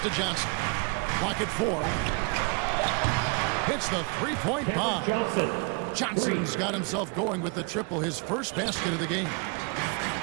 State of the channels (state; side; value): quieter; left; 33.6 dB